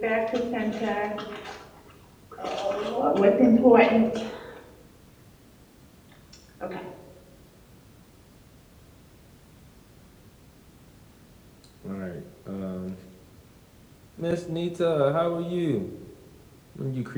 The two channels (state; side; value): identical; both; correlation 1.00